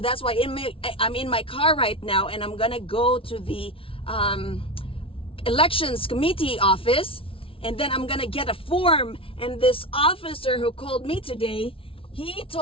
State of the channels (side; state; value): right; late; 0.26 ms